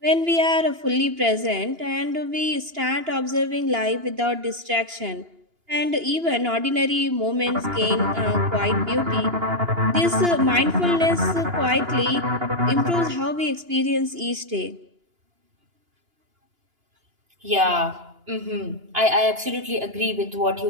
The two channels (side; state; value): left; late; 2.9 ms